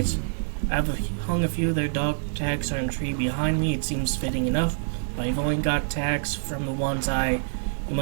I've hung a few of their dog tags on a tree behind me. It seems fitting enough, but I've only got tags from the ones you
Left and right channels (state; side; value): silent; left; digital silence